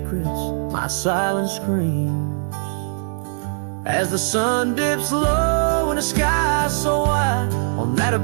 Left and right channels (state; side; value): silent; left; digital silence